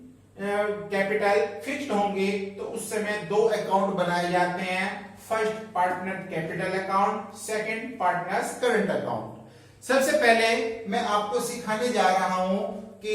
कैपिटल फिक्स्ड होंगे तो उस समय दो अकाउंट बनाए जाते हैं, first partner capital account, second partners current account. सबसे पहले मैं आपको सिखाने जा रहा हूं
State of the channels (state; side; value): identical; both; correlation 1.00